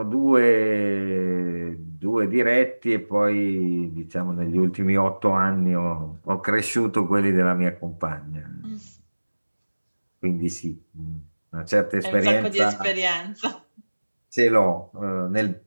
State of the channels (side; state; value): both; inverted; correlation -1.00